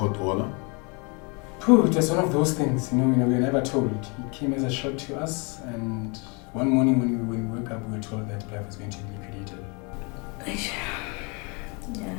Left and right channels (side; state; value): right; quieter; 31.9 dB